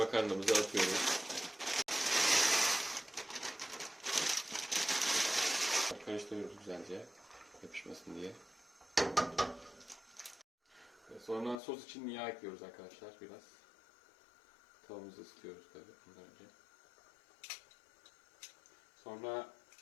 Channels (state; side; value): drops out; right; at 11.6 s